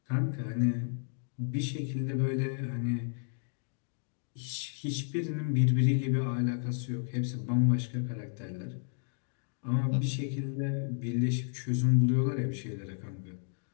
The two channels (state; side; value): silent; right; digital silence